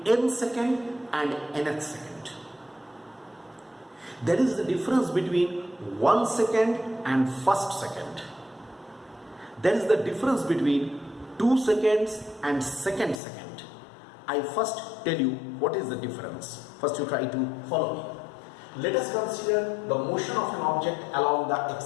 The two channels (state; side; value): drops out; right; at 13.2 s